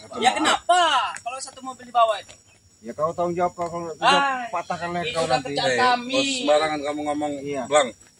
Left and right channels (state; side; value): identical; both; correlation 1.00